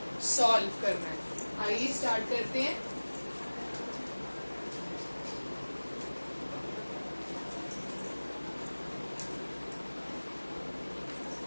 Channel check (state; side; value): inverted; both; correlation -1.00